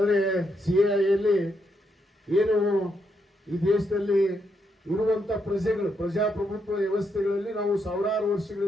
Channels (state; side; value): normal; both; correlation 0.79